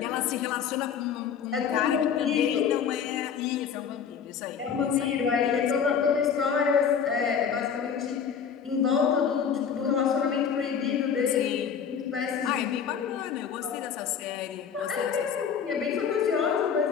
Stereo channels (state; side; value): quieter; right; 7.3 dB